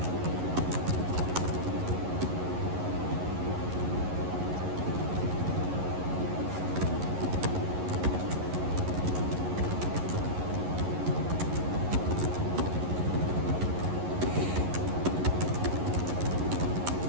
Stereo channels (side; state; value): left; late; 11 ms